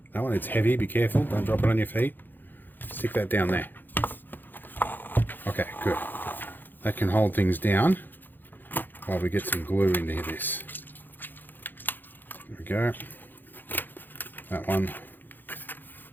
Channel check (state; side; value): late; right; 0.090 ms